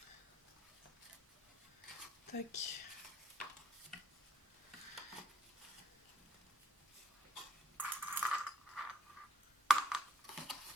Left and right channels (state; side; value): normal; both; correlation 0.68